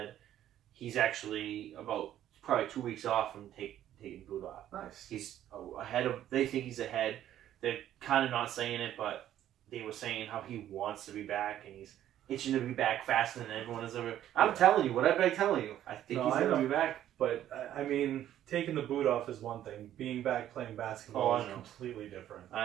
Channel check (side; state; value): left; quieter; 11.8 dB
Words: he's actually about probably 2 weeks off from taking the boot off. Nice. He's ahead of. They think he's ahead. They're kind of not saying it, but they were saying how he wants to be back and he's itching to be back faster than everyone has ever. I'm telling you, what I've been telling you, I think he's going to be back. But I mean, taking the boot off is one thing. Being back playing basketball is completely different.